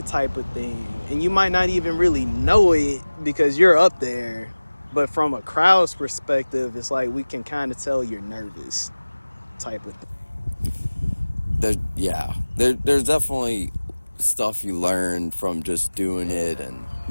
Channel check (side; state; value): both; inverted; correlation -1.00